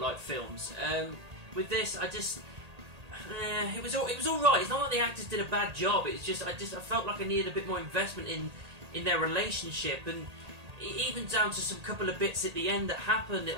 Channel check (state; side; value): late; left; 1.8 ms